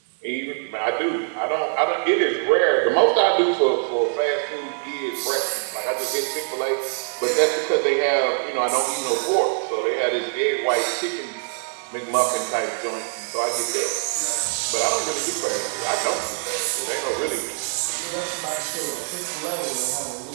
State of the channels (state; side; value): silent; left; digital silence